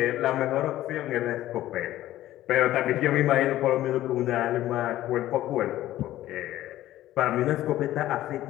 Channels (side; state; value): right; quieter; 14.4 dB